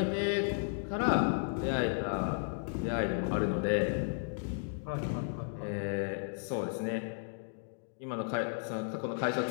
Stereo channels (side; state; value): right; silent; digital silence